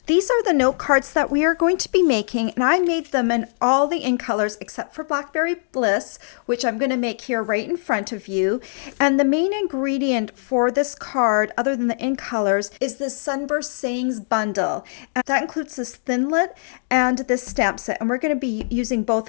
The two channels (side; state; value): right; silent; digital silence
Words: These are the note cards that we are going to be making, and I made them in all the in colors except for Blackberry Bliss, which I'm going to make here right in front of you. And the main ingredient for this card, other than the in colors, is this Sunburst Sayings bundle. And that includes this Thinlit and this stamp set, and we're going to be using both